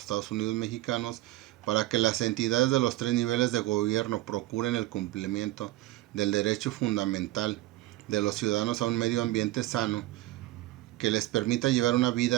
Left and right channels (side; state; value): left; quieter; 17.1 dB